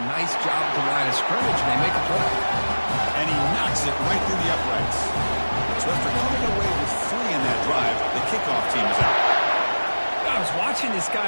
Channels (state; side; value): inverted; both; correlation -1.00